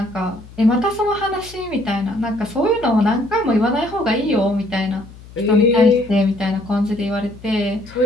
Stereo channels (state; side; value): noise; left; hum, 19 dB below the sound